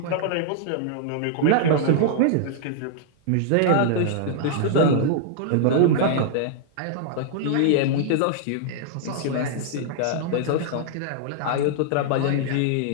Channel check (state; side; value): different; both; correlation -0.01